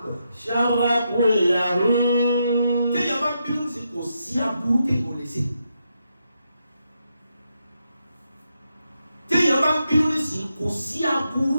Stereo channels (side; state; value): both; inverted; correlation -0.83